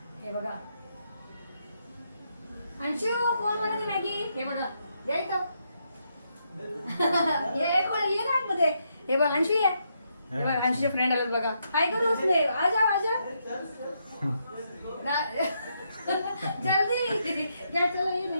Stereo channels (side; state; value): both; inverted; correlation -0.79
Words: हे बघा अंशू, कोण बनवते मॅगी? हे बघा या इथं. ये कोण ये ना आतमध्ये. हे बघ अंशू ये. हे बघ अंशूचे फ्रेंड आलेत बघा. काय करू उसने? आजा आजा जल्दी या, चला ये